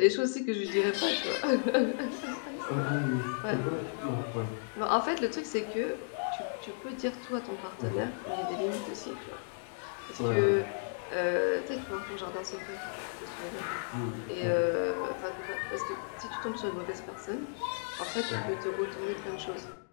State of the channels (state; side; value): silent; right; digital silence